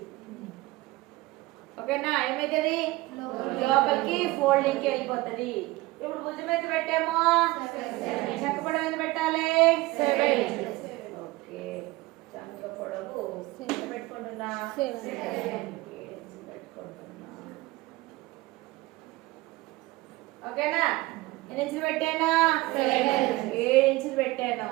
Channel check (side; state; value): left; quieter; 20.4 dB